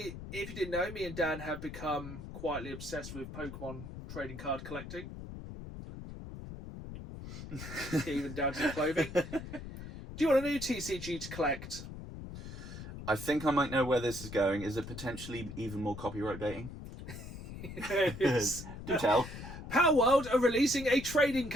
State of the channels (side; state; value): left; noise; rumble, 10 dB below the sound